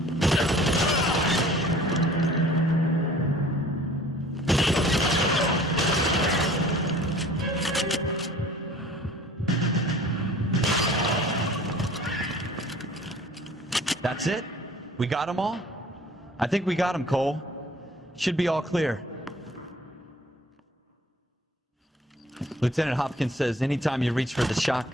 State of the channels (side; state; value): both; normal; correlation 0.50